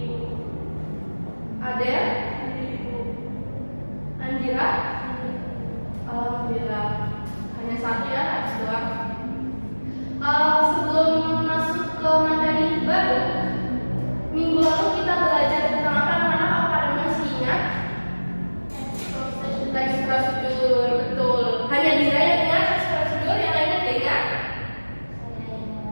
Adel, Andira, alhamdulillah hanya satu ya, habis doang. Sebelum masuk ke materi baru, minggu lalu kita belajar tentang apa anak-anak? Apakah masih ingat? Teks prosedur, betul. Hanya Dira yang ingat teks prosedur, yang lainnya tidak ingat?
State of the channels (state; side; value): inverted; both; correlation -1.00